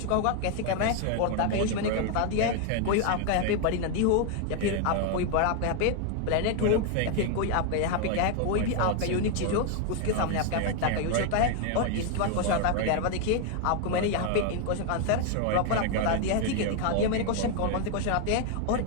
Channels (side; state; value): both; different; correlation 0.01